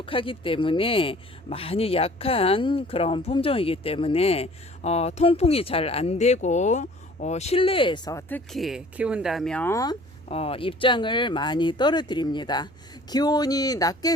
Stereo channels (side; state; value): both; normal; correlation 0.50